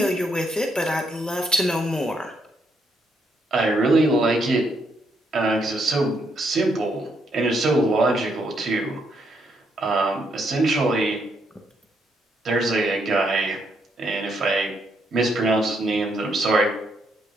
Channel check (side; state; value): both; normal; correlation 0.75